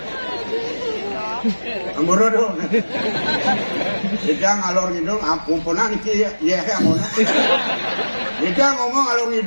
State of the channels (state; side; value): inverted; both; correlation -1.00